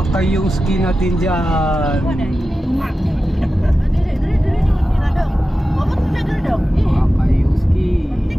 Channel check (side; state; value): both; normal; correlation 0.93